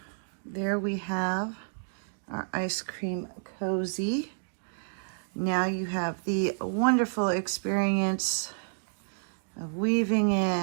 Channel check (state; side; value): silent; left; digital silence